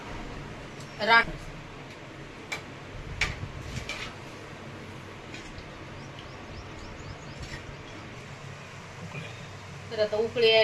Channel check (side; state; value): both; identical; correlation 1.00